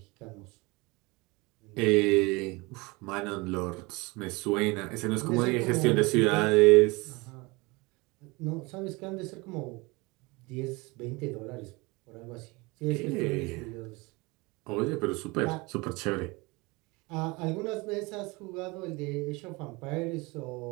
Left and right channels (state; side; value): quieter; left; 25.0 dB